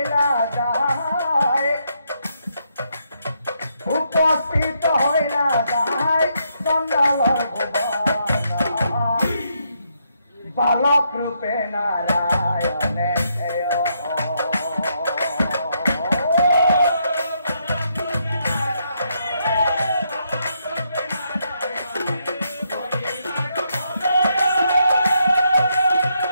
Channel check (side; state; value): both; inverted; correlation -0.77